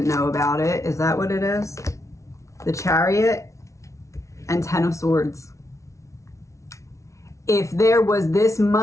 know about it. Is that what it is? The Chariot and 10 of Swords. If there was this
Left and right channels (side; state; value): right; late; 0.14 ms